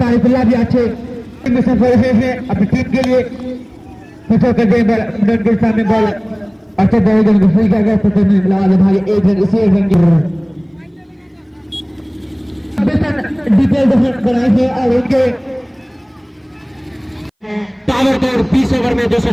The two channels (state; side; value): identical; both; correlation 1.00